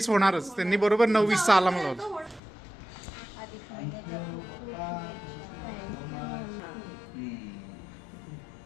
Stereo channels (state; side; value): drops out; right; at 2.4 s